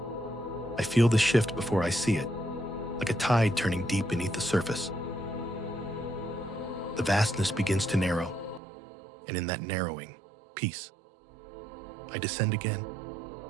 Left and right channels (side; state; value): left; drops out; at 8.6 s